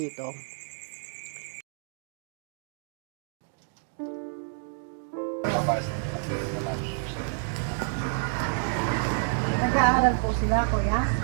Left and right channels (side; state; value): left; silent; 58 dB below the other